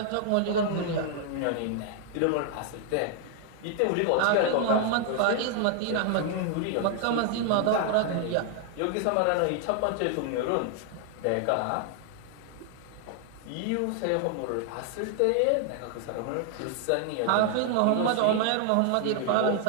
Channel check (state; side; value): different; both; correlation 0.00